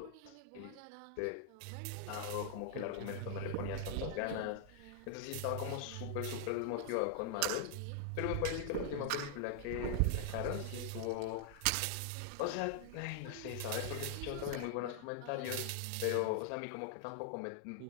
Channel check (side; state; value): both; different; correlation 0.00